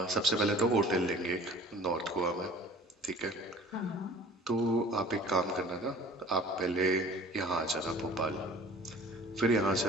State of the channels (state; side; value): normal; both; correlation 0.47